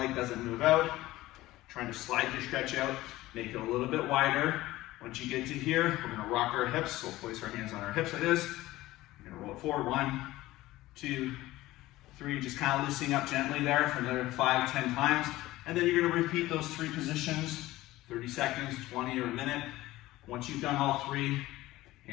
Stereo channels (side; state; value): right; quieter; 17.2 dB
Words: doesn't move out. Trying to slide your stretch out, make it a little bit wider. Once you get to here, we're gonna rock our hips. So we'll place our hands on our hips like this. We're gonna roll it forward, 1, 2, 3, just kind of loosening up gently there for another 5, 10 times. And then you're gonna repeat those three positions, 30 seconds, 20, or a minute. Once you've done all three,